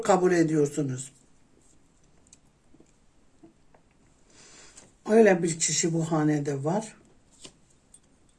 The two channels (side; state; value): both; identical; correlation 1.00